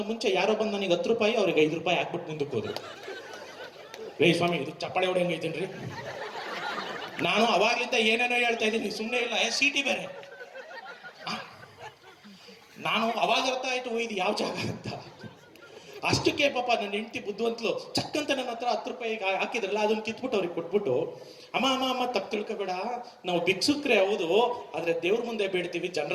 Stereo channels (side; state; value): both; identical; correlation 1.00